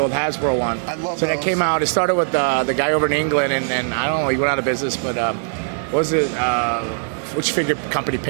Hasbro one. I love so those. That came out. It started with the guy over in England, and I don't know, he went out of business, but was it? Which figure company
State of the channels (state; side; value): silent; left; 56 dB below the other